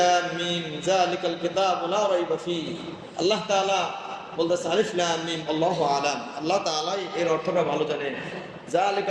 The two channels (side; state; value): both; identical; correlation 1.00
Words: মিম যালিকাল কিতাবু লা রাইবা ফীহি। আল্লাহ তাআলা বলতেছে আলিফ লাম মিম আল্লাহু আলাম। আল্লাহ তাআলা এর অর্থটা ভালো জানেন।